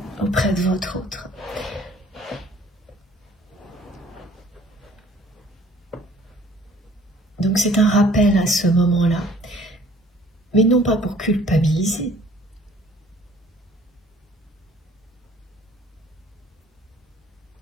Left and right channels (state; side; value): normal; both; correlation 0.54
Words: auprès de votre autre. Donc c'est un rappel à ce moment-là, mais non pas pour culpabiliser,